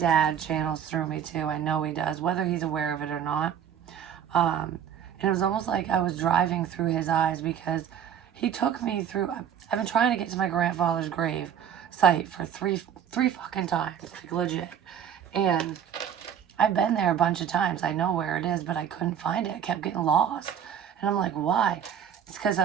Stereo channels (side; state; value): left; quieter; 8.9 dB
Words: channels through me too. I know he does, whether he's aware of it or not. And it was almost like I was driving through his eyes because he took me through. I've been trying to get to my grandfather's grave site for three fucking times, like legit. And I've been there a bunch of times. I know where it is, but I couldn't find it. I kept getting lost. And I'm like, why? It's because